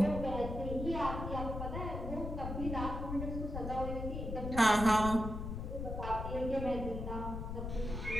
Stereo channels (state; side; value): noise; left; rumble, 5 dB below the sound